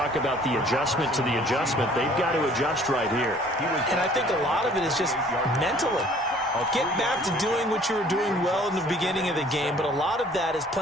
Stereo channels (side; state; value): both; normal; correlation 0.55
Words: about the adjustment to the adjustment. They've got to adjust right here. And I think a lot of it is just mentally. Get back to doing what you were doing well in the beginning of the game, but a lot of that is